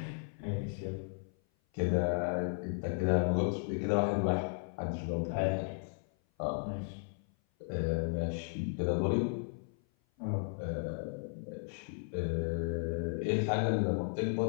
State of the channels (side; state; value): right; silent; 55 dB below the other